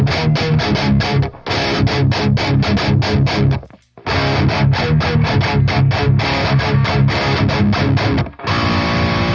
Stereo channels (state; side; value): identical; both; correlation 1.00